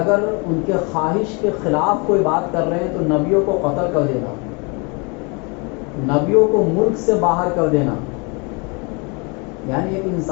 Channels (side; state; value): right; quieter; 31.4 dB